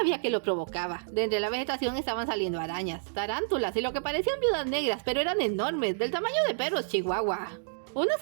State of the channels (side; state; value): left; silent; digital silence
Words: que lo provocaba. De entre la vegetación estaban saliendo arañas, tarántulas y lo que parecían viudas negras, pero eran enormes, del tamaño de perros chihuahua. Una